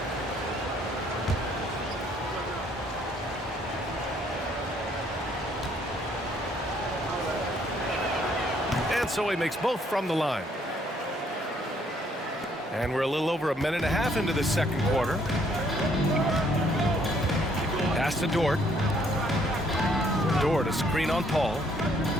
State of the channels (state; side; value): normal; both; correlation 0.66